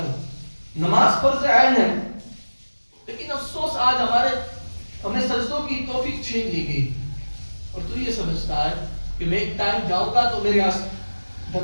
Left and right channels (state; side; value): inverted; both; correlation -1.00